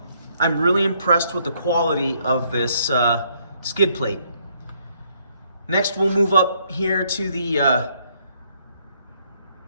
I'm really impressed with the quality of this skid plate. Next, we'll move up here to the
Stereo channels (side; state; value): both; inverted; correlation -0.70